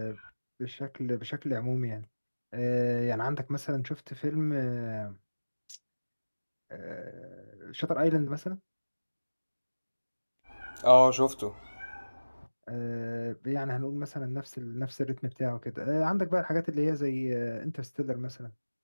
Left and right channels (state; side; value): inverted; both; correlation -1.00